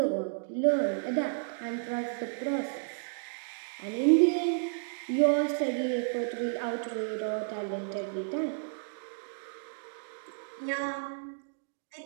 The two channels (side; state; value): left; silent; digital silence